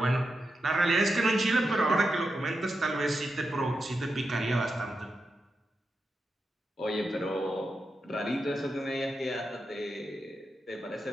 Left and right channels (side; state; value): both; normal; correlation 0.88